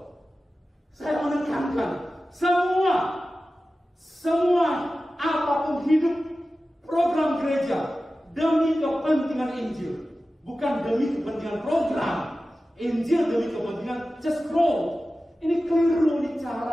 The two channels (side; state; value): both; normal; correlation 0.95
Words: Saya menekankan semua apapun hidup program gereja demi kepentingan Injil, bukan demi kepentingan program. Injil demi kepentingan just grow. Ini keliru, ini